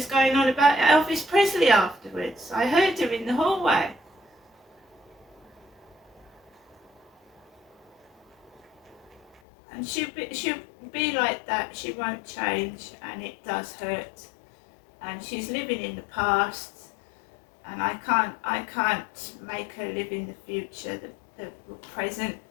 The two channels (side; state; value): right; drops out; at 9.4 s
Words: going on about Elvis Presley afterwards. I heard her in the hallway. And she'll be like that. She won't change, and it does hurt. And she's living in the past, and I can't make her live in the future, the present.